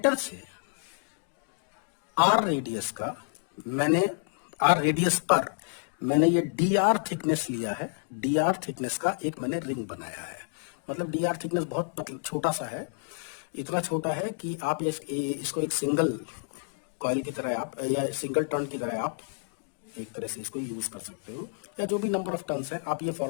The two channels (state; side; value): silent; right; digital silence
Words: से आर रेडियस का मैंने, आर रेडियस पर मैंने ये डी आर थिकनेस लिया है, डी आर थिकनेस का एक मैंने रिंग बनाया है। मतलब डी आर थिकनेस बहुत छोटा सा है, इतना छोटा है कि आप इसको एक सिंगल कॉइल की तरह आप, या सिंगल टर्न की तरह आप एक तरह से इसको यूज कर सकते हो, या जो भी नंबर ऑफ टर्न्स है आप ये